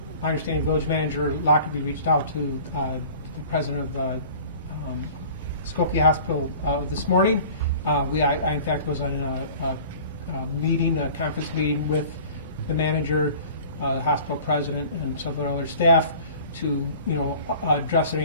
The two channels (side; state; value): both; inverted; correlation -0.45